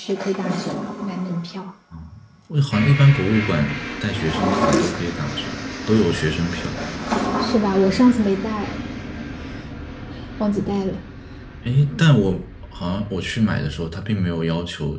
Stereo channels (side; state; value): both; identical; correlation 1.00